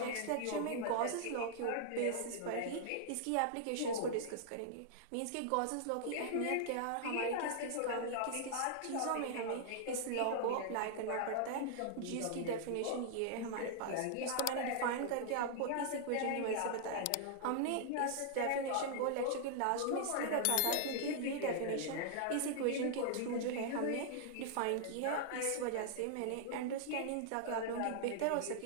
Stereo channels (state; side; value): different; both; correlation -0.01